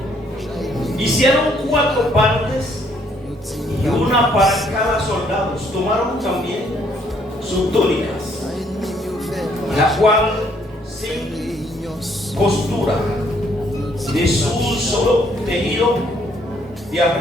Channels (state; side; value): normal; both; correlation 0.67